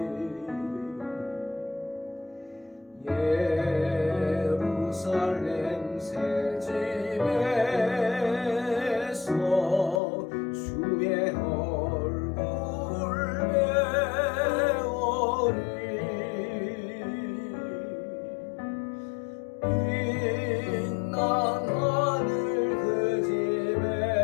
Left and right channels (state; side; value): drops out; right; at 10.0 s